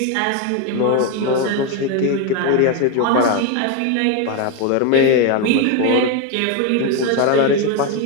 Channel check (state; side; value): different; both; correlation 0.02